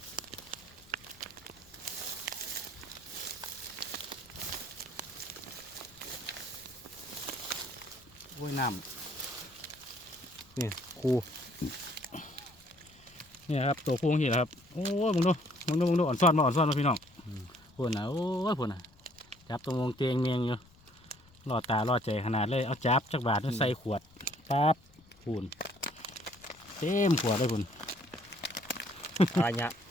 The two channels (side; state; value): left; noise; rumble, 27 dB below the sound